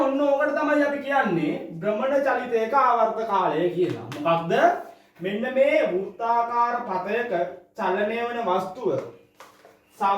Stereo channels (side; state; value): both; identical; correlation 1.00